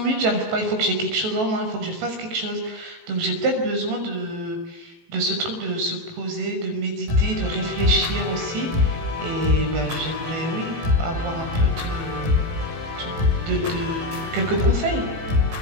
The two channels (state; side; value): late; left; 19 ms